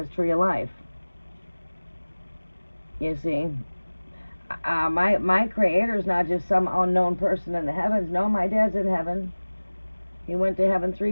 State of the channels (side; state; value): both; inverted; correlation -1.00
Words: tree of life. You see? My Creator's not just some unknown person in the heavens. No, my dad's in heaven. He went to heaven